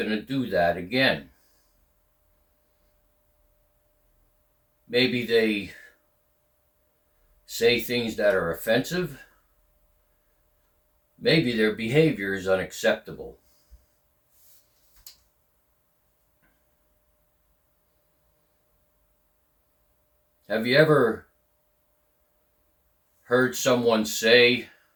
to do that again? Maybe they say things that are offensive. Maybe their behavior is unacceptable. Have you ever heard someone say,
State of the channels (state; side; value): identical; both; correlation 1.00